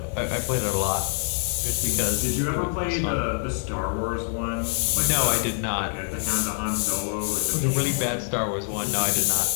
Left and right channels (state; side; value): silent; right; 57 dB below the other